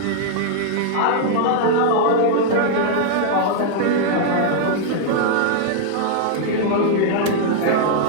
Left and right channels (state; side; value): different; both; correlation -0.01